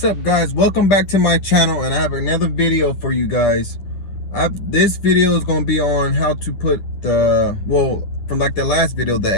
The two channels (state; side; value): late; right; 10 ms